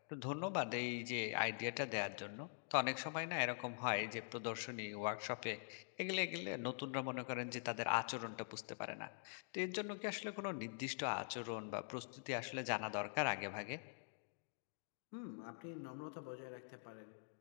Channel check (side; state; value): right; silent; digital silence